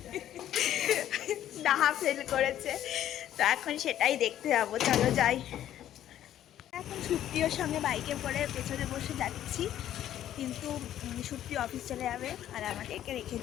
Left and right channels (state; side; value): quieter; right; 11.7 dB